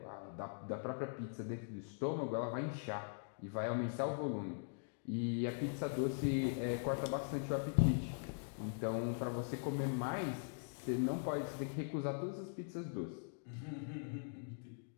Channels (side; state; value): right; silent; digital silence